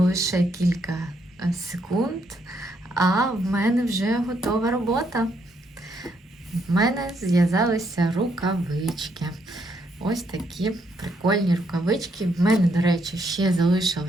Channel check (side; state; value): both; normal; correlation 0.74